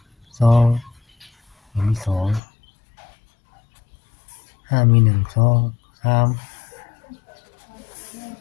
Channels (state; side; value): drops out; right; at 2.4 s